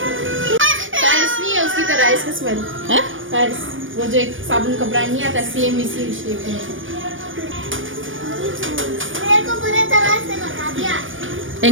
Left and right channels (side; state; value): left; late; 0.57 ms